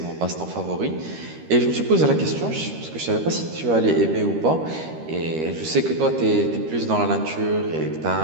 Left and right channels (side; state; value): left; late; 13 ms